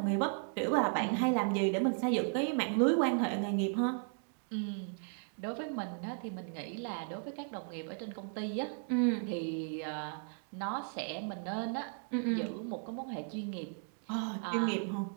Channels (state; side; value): silent; left; 54 dB below the other